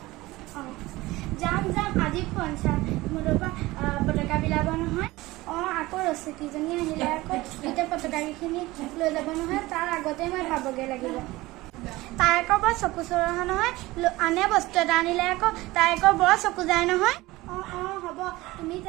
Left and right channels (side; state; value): left; quieter; 19.5 dB